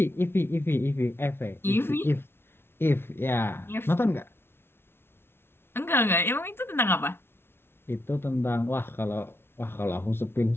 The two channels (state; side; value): late; right; 0.11 ms